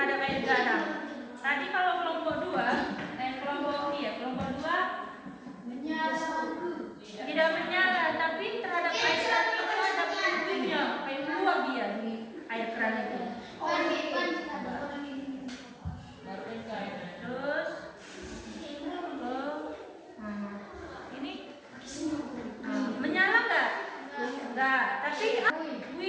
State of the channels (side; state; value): both; identical; correlation 1.00